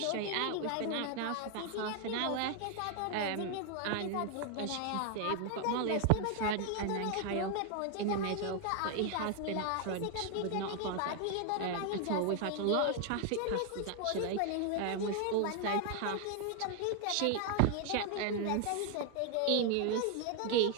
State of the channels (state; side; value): different; both; correlation 0.00